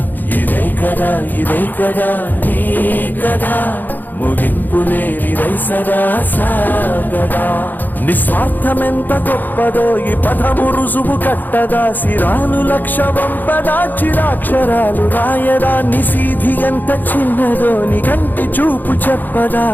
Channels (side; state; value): right; late; 0.087 ms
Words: ఇదే కదా నీ కదా ముగింపు లేనిదై సదా సాగదా నిస్వార్థమెంత గొప్పదో ఈ పదము రుజువు కట్టదా సిరాలు లక్ష వంపదా చిరాక్షరాలు రాయదా నిశీధి ఎంత చిన్నదో నీ కంటి చూపు చెప్పదా